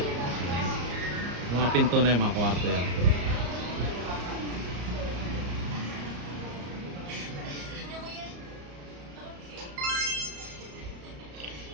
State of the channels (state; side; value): late; left; 34 ms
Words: Mga pinto na yung mga kwarto yan.